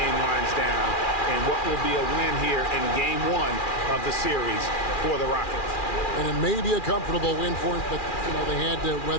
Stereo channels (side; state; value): right; late; 2.4 ms